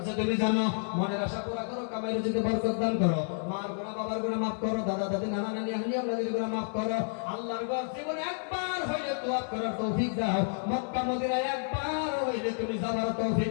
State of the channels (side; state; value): right; silent; 58 dB below the other